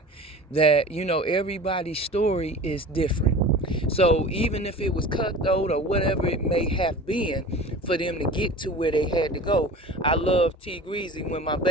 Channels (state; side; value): normal; both; correlation 0.38